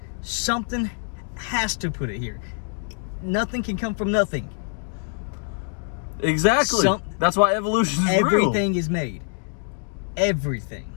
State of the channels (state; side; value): silent; right; 56 dB below the other